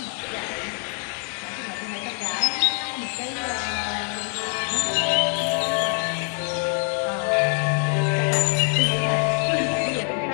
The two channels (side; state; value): right; quieter; 39.8 dB